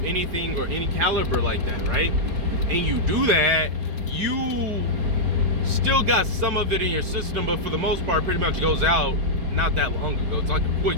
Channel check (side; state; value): left; late; 4.9 ms